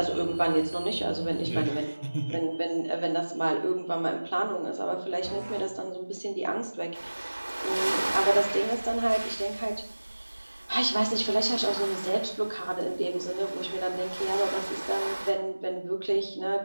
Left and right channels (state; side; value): inverted; both; correlation -1.00